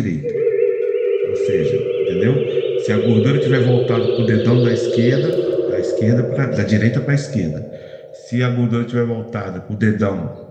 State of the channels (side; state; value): both; identical; correlation 1.00